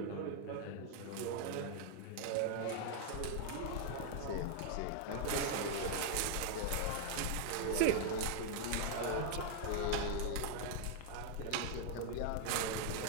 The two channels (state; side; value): different; both; correlation 0.00